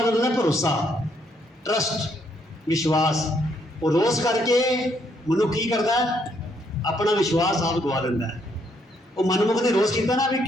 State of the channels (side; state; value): both; normal; correlation 0.72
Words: मतलब है भरोसा, ट्रस्ट, विश्वास। वो रोज करके मनुख की करता है, अपना विश्वास आप गवा लेंदा है। वो मनमुख ने रोज किया ना भी